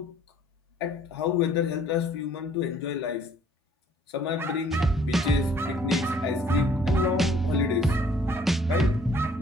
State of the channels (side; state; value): both; normal; correlation 0.59